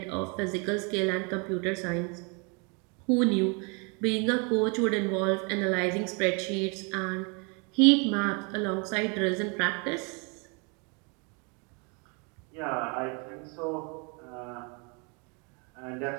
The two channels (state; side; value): quieter; left; 33.1 dB